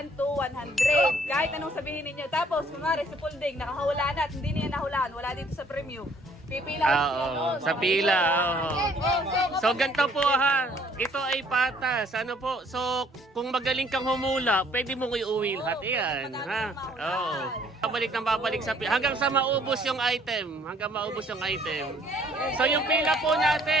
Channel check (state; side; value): normal; both; correlation 0.61